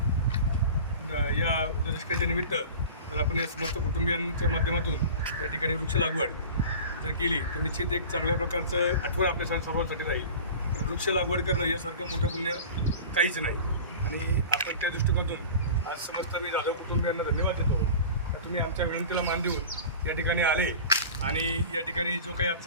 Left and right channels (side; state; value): both; inverted; correlation -0.37